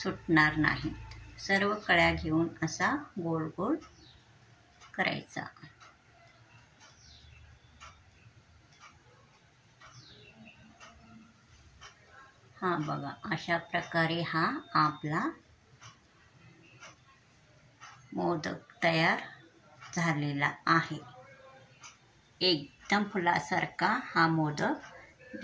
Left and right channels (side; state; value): both; identical; correlation 1.00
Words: नाहीत. सर्व कळ्या घेऊन असा गोल गोल करायचा. हा बघा, अशा प्रकारे हा आपला मोदक तयार झालेला आहे. एकदम फुलासारखा हा मोदक